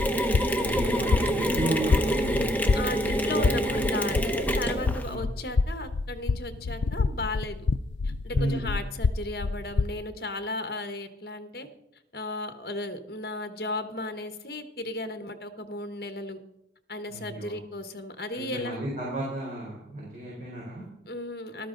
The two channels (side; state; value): both; normal; correlation 0.65